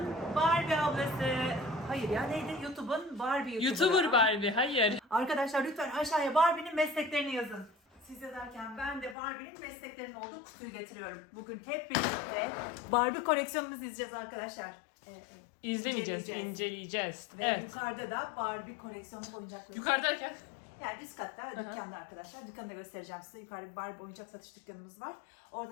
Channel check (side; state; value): right; drops out; at 9.2 s